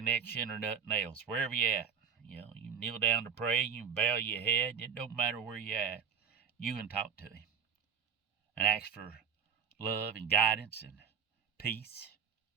or nothing else. Wherever you at, you kneel down to pray. You bow your head. It don't matter where you at. You can talk to him and ask for love and guidance and peace.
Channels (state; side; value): quieter; left; 7.2 dB